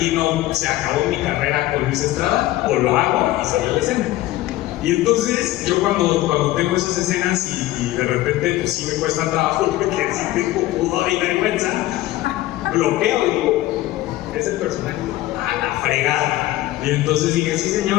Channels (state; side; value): quieter; right; 16.1 dB